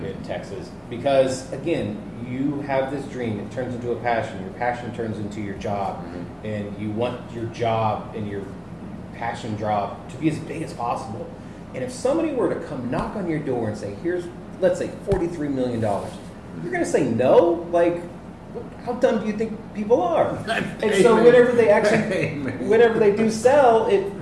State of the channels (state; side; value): identical; both; correlation 1.00